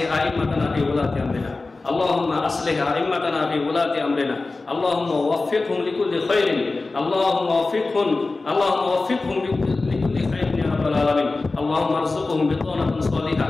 ائمتنا في ولاة امرنا، اللهم أصلح أئمتنا في ولاة أمرنا، اللهم وفقهم لكل خير، اللهم وفقهم لكل خير يا رب العالمين. اللهم ارزقهم بطانة صالحة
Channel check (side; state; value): right; quieter; 3.5 dB